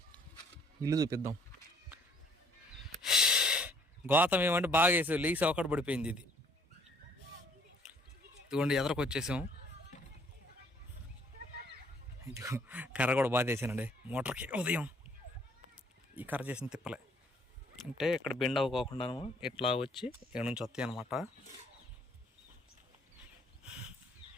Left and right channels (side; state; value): both; normal; correlation 0.61